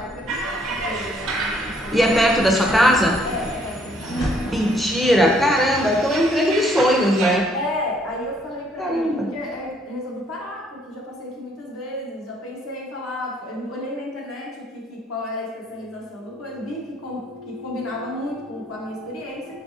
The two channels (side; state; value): both; normal; correlation 0.66